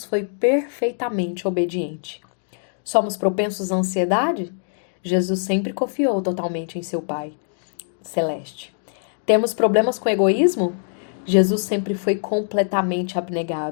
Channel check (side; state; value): right; silent; digital silence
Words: foi perfeitamente obediente. Somos propensos à ansiedade? Jesus sempre confiou totalmente em seu Pai celeste. Temos problemas com egoísmo? Jesus sempre foi completamente